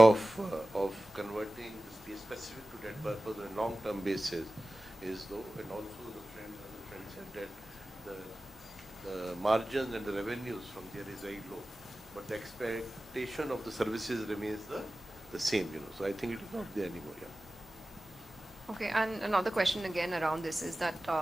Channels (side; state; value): both; normal; correlation 0.96